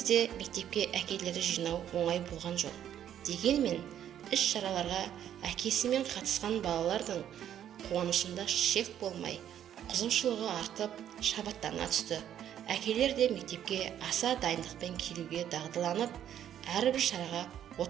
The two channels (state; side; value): quieter; left; 10.3 dB